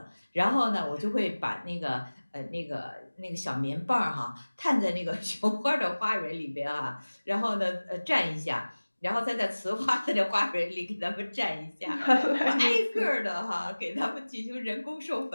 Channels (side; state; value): both; inverted; correlation -1.00